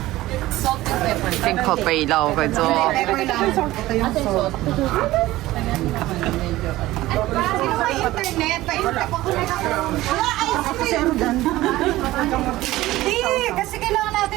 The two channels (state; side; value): quieter; left; 16.9 dB